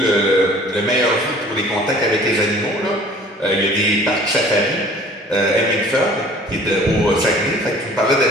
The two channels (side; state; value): both; normal; correlation 0.50